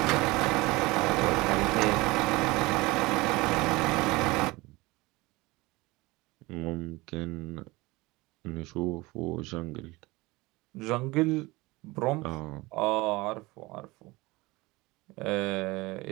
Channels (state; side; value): quieter; left; 22.0 dB